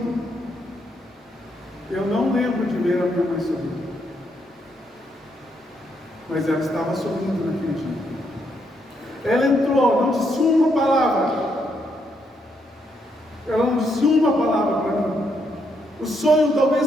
Eu não lembro de ver a minha mãe sorrindo. Mas ela estava sorrindo naquele dia. Ela entrou, não disse uma palavra. Ela não disse uma palavra para mim. O sonho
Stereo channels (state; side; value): normal; both; correlation 0.76